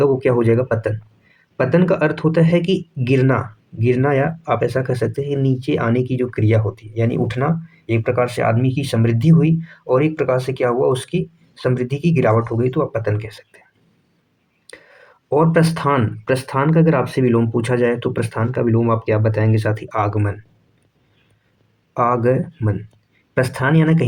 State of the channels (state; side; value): identical; both; correlation 1.00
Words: वो क्या हो जाएगा, पतन। पतन का अर्थ होता है कि गिरना, गिरना, या आप ऐसा कह सकते हैं नीचे आने की जो क्रिया होती है, यानी उठना। एक प्रकार से आदमी की समृद्धि हुई और एक प्रकार से क्या हुआ, उसकी समृद्धि की गिरावट हो गई, तो आप पतन कह सकते हैं। और प्रस्थान, प्रस्थान का अगर आपसे विलोम पूछा जाए तो प्रस्थान का विलोम आप क्या बताएंगे साथी? आगमन। आगमन, प्रस्थान यानी